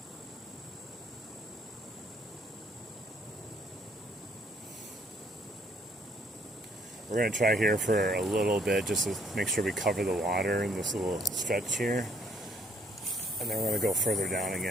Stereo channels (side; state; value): both; normal; correlation 0.66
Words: We're going to try here for a little bit just to make sure we cover the water in this little stretch here. And then we're going to go further down